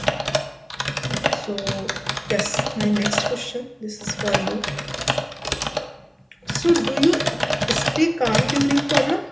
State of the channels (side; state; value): both; identical; correlation 1.00